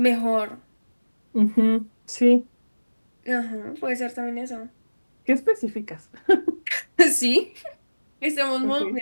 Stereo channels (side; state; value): both; inverted; correlation -1.00